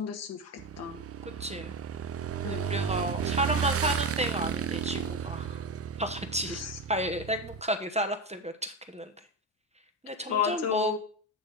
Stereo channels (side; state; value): both; normal; correlation 0.17